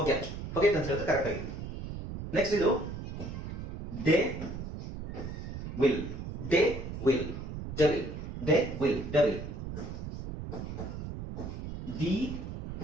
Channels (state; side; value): noise; right; rumble, 7 dB below the sound